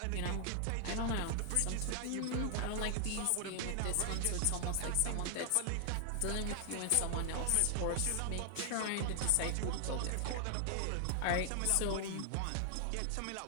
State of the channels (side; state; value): both; different; correlation 0.00